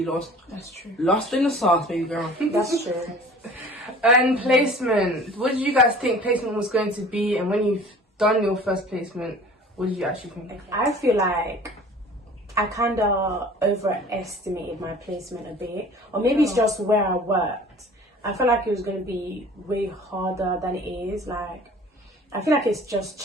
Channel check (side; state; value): both; normal; correlation 0.46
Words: be lost. That's true. Lost in the sauce, baby girl. That's true. And placement. What did you guys think placement was going to be? And when you've done your first placement, what did you actually think? I feel like I kind of overestimated my placement a bit, or maybe it's just where I worked. I felt like it was going to be way harder than it is. Like, I feel like it's just